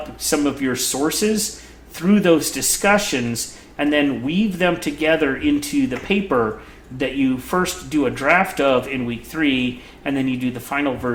some of your sources through those discussions, and then weave them together into the paper that you first do a draft of in week 3, and then you do the final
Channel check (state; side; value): identical; both; correlation 1.00